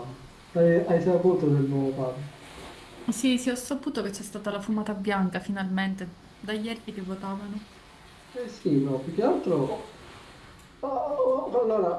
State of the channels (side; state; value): both; identical; correlation 1.00